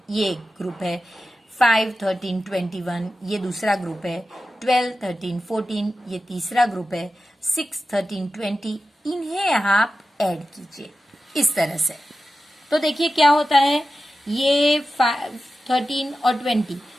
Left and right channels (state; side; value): normal; both; correlation 0.93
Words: ये एक ग्रुप है, 5, 13, 21 ये दूसरा ग्रुप है, 12, 13, 14 ये तीसरा ग्रुप है, 6, 13, 20 इन्हें आप ऐड कीजिए इस तरह से। तो देखिए क्या होता है, ये 13 और 20,